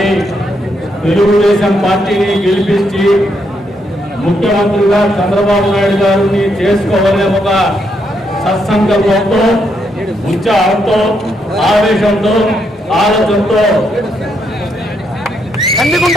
తెలుగుదేశం పార్టీని గెలిపించి ముఖ్యమంత్రిగా చంద్రబాబు నాయుడు గారిని చేసుకోవాలనే ఒక సత్సంకల్పంతో, ఉత్సాహంతో, ఆవేశంతో, ఆలోచనతో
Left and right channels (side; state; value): both; normal; correlation 0.78